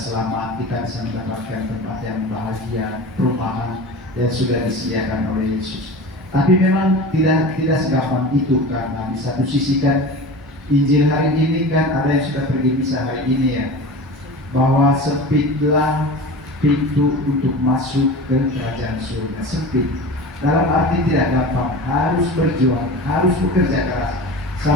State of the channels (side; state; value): both; normal; correlation 0.33